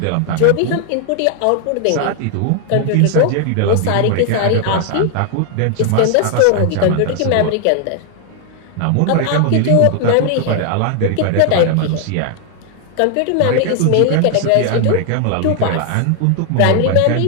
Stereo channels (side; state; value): both; different; correlation 0.00